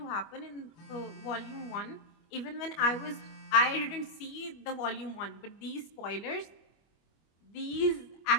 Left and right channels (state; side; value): late; right; 25 ms